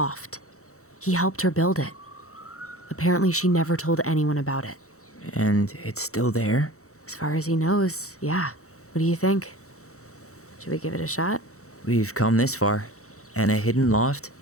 He helped her build it. Apparently she never told anyone about it. And it's still there? As far as he knows, yeah. What do you think? Should we give it a shot? We've come this far. And a hidden loft?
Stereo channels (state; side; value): late; right; 0.64 ms